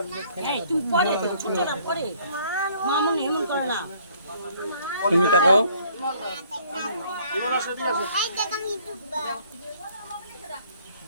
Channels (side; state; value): both; inverted; correlation -0.61